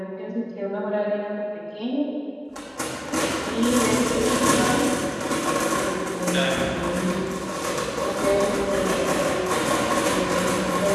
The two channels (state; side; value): identical; both; correlation 1.00